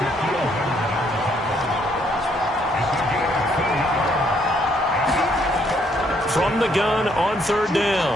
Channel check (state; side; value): normal; both; correlation 0.69